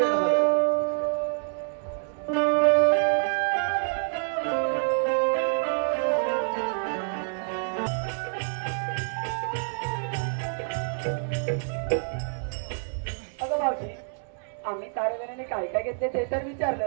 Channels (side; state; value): left; silent; 60 dB below the other